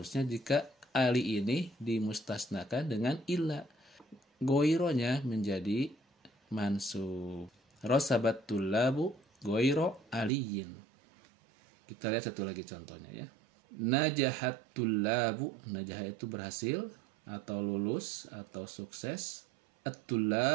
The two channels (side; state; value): left; drops out; at 10.3 s